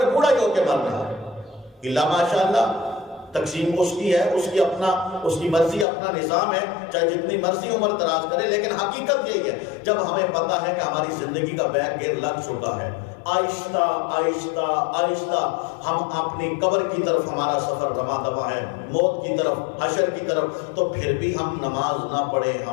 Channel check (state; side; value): drops out; right; at 5.9 s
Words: بوڑھا ہی ہو کے مرنا ہے، اللہ ماشاءاللہ تقسیم اس کی ہے، اس کی مرضی، اپنا نظام ہے، چاہے جتنی مرضی عمر دراز کرے. لیکن حقیقت یہی ہے جب ہمیں پتہ ہے کہ ہماری زندگی کا بیگ گیر لگ چکا ہے، آہستہ آہستہ آہستہ ہم اپنی قبر کی طرف ہمارا سفر رواں دوا ہے، موت کی طرف، حشر کی طرف، تو پھر بھی ہم نماز نہ پڑھیں.